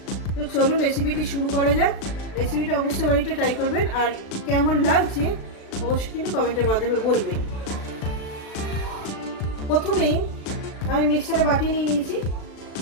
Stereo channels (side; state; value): right; late; 36 ms